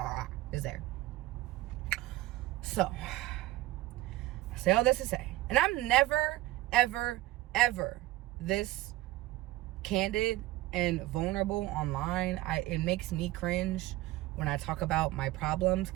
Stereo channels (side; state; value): left; quieter; 17.2 dB